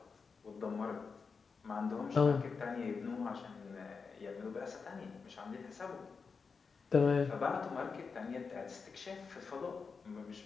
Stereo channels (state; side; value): quieter; right; 5.1 dB